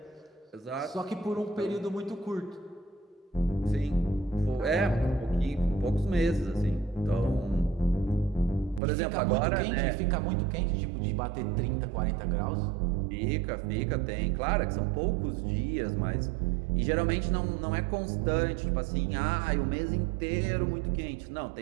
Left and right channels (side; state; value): left; drops out; at 8.8 s